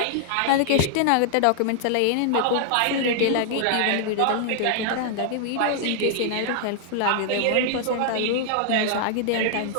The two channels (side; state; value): both; different; correlation -0.01